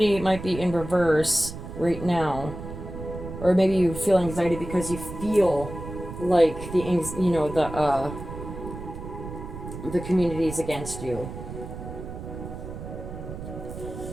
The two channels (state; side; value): noise; right; rumble, 10 dB below the sound